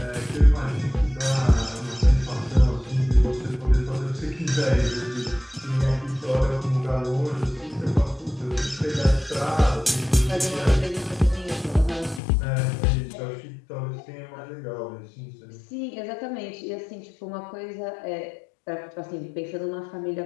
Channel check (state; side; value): drops out; right; at 12.2 s